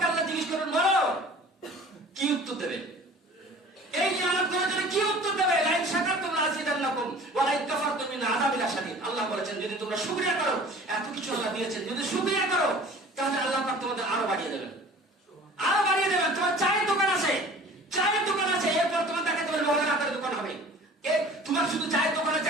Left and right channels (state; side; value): normal; both; correlation 0.46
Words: আল্লাহ জিজ্ঞেস করবেন, বলো কি উত্তর দেবে? এই নিয়ামত গুলোর জন্য কি উত্তর দেবে? লাইন শাকারতুম লাযিদান্নাকুম ওয়া লাইন কাফারতুম মিন আযাবিল শাদীদ। আল্লাহ বলেছেন যদি তোমরা শুকরিয়া করো, এত কিছু আল্লাহ দিয়েছেন, যদি শুকরিয়া করো তাহলে আল্লাহ পাক তোমাদের আরো বাড়িয়ে দেবেন, আরো বাড়িয়ে দেবেন। তোমার চায়ের দোকান আছে, চায়ের দোকান আছে, এরপর তোমার তাকে তোমার লোহার আটার দোকান হবে। তোমার শুধু চায়ের দোকান আছে,